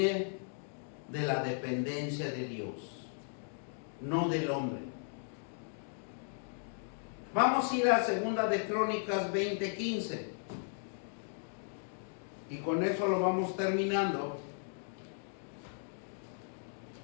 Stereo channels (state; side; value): silent; right; digital silence